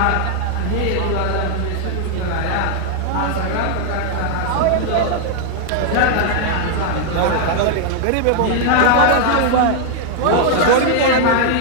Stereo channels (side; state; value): both; different; correlation 0.00